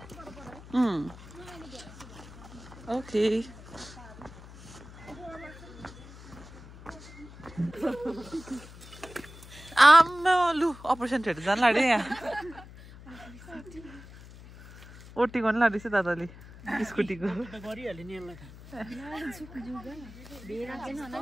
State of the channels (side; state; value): left; noise; hum, 17 dB below the sound